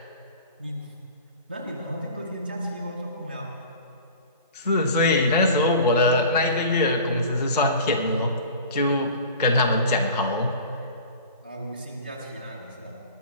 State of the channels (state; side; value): inverted; both; correlation -0.40